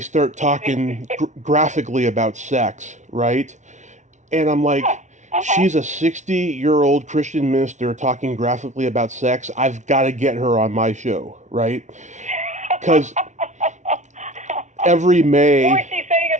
talking graphically about sex, right? And I'm like, she's a 60-year-old Christian minister talking graphically about sex. I've got to get her on my show, right? Because every May... What was she saying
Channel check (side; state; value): left; late; 0.35 ms